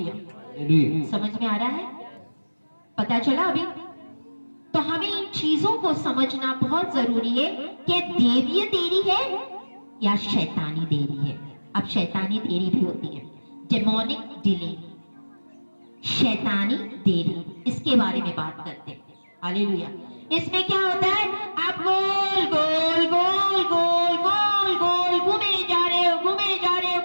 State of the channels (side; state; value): both; inverted; correlation -1.00